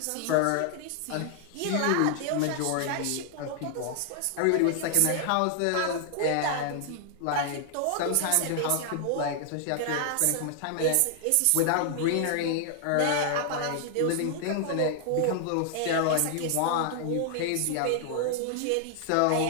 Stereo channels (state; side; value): different; both; correlation 0.00